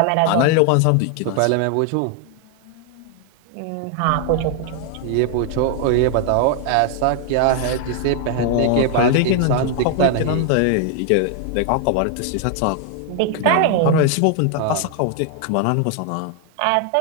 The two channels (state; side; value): different; both; correlation 0.00